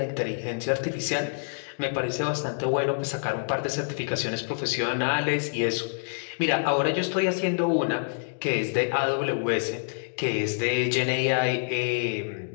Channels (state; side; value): silent; right; digital silence